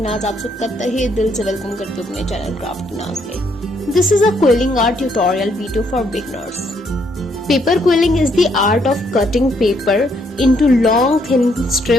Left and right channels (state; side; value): normal; both; correlation 0.71